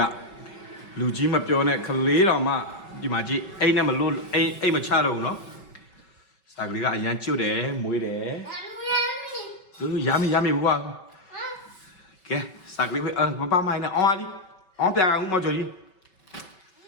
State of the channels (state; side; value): late; right; 5.3 ms